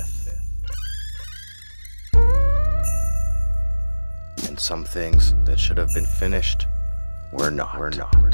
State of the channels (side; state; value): both; inverted; correlation -1.00